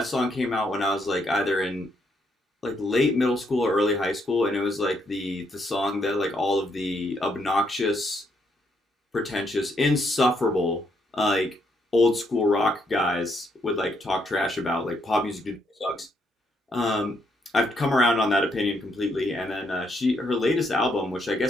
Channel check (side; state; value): both; normal; correlation 0.75